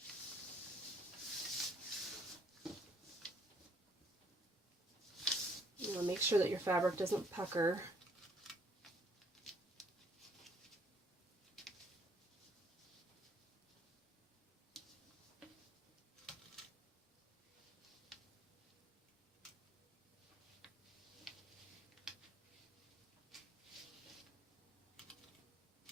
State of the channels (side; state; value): both; normal; correlation 0.64